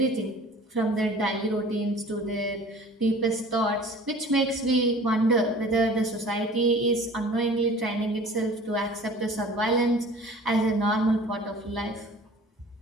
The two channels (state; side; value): normal; both; correlation 0.45